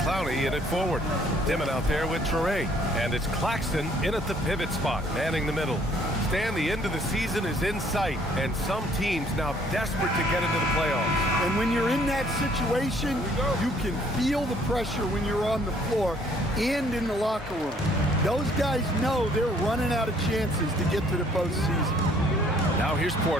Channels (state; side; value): normal; both; correlation 0.62